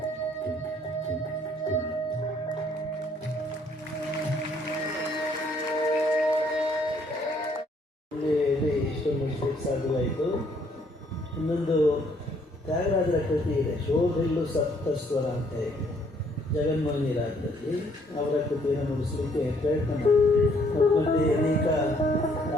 ಇಷ್ಟೊಂದು ಮುಗಿಸ್ಲಿಕ್ಕೆ ಸಾಧ್ಯವಾಯಿತು. ಇನ್ನೊಂದು ತ್ಯಾಗರಾಜರ ಕೃತಿ ಇದೆ, ಶೋಧಿಲ್ಲು ಸಪ್ತಸ್ವರ ಅಂತ ಹೇಳಿ, ಜಗನ್ಮೋಹಿನಿ ರಾಗದಲ್ಲಿ ಅವರ ಕೃತಿಯನ್ನು ಮುಗಿಸ್ಲಿಕ್ಕೆ ಪ್ರಯತ್ನ ಮಾಡ್ತೀವಿ. ಮತ್ತೆ ಅನೇಕ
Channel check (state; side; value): normal; both; correlation 0.66